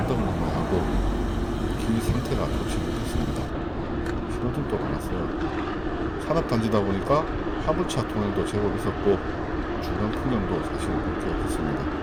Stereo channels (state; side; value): identical; both; correlation 1.00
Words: 넘어야 하고 길 상태가 좋지 못했습니다. 신호등도 많았어요. 산업단지다 보니까 화물차 통행도 제법 있었고 주변 풍경도 사실 볼 게 없었습니다.